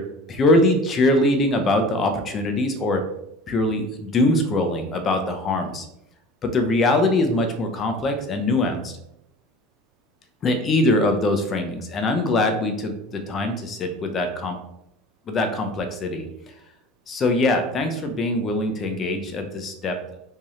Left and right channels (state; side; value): normal; both; correlation 0.42